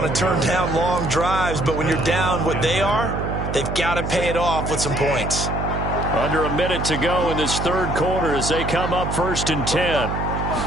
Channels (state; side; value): noise; right; hum, 3 dB below the sound